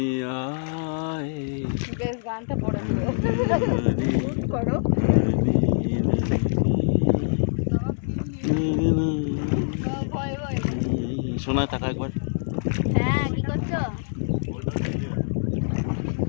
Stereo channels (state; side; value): silent; right; digital silence